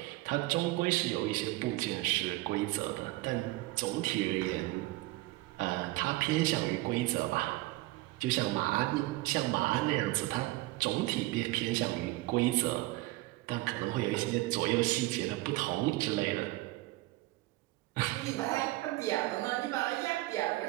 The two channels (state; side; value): quieter; left; 19.7 dB